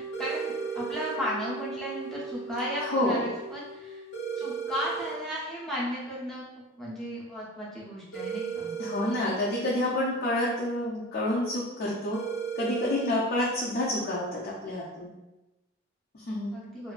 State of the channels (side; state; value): both; normal; correlation 0.34